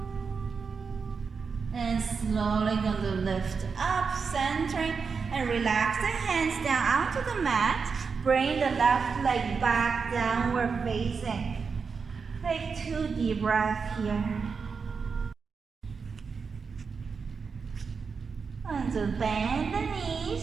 And slowly going to lift up, centering, and relax the hands down onto the mat. Bring the left leg back, downward facing. Take 2 deep breaths here. And to bend the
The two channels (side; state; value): left; quieter; 5.4 dB